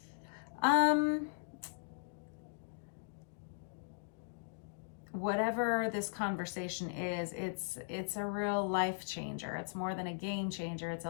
Whatever this conversation is, it's a real life changer. It's more than a game changer. It's a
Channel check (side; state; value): right; silent; digital silence